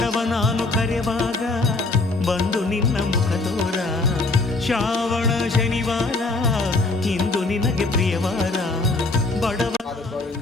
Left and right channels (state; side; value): quieter; right; 3.3 dB